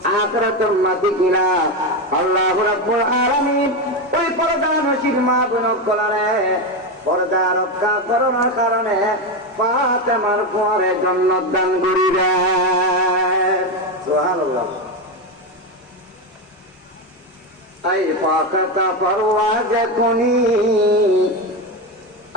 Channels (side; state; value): both; normal; correlation 0.13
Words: আখিরাতের মাটি কিনা আল্লাহ রাব্বুল আলামিন ওই পর্দা নসিব মা বোন কলারে পর্দা রক্ষা করার কারণে ফাতেমার পরে জান্নাত দান করিবেন সুবহানাল্লাহ আই ফাকাতা পরওয়াজ কুনি